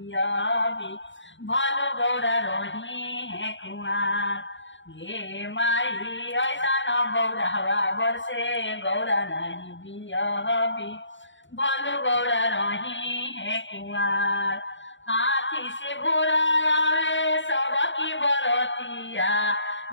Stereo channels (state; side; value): late; right; 0.54 ms